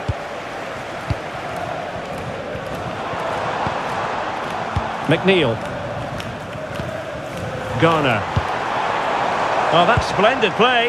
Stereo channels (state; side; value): identical; both; correlation 1.00